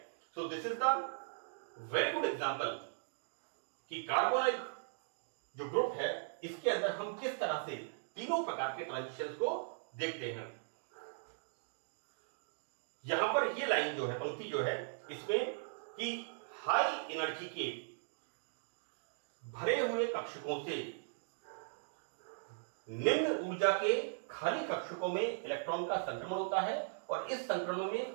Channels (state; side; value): silent; left; digital silence